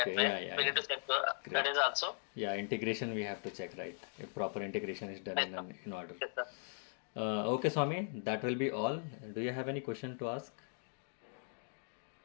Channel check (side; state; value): right; silent; 52 dB below the other